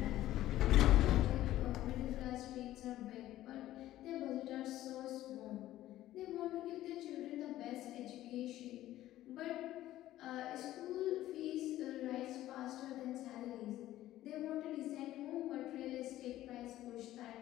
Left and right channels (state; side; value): quieter; right; 14.3 dB